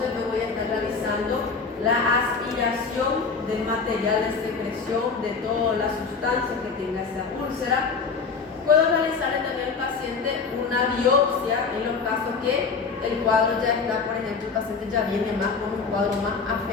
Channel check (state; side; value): quieter; right; 5.0 dB